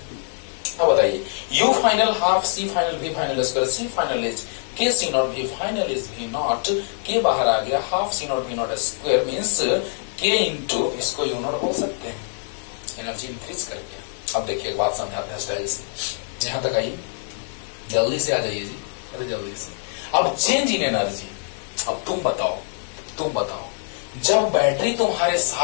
अब बताइए U final half C final V final square, C final is K C naught, V final is V naught, K बाहर आ गया, half C naught V naught square means K into इसको U naught बोल सकते हैं, energy increase कर गया। अब देखिए एक बात समझाते हैं स्टाइल से, यहां तक आइए, जल्दी से आ जाइए जी, अरे जल्दी से। अब चेंज इन एनर्जी, अब तुम बताओ जब बैटरी तुम्हारे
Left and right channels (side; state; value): right; silent; 63 dB below the other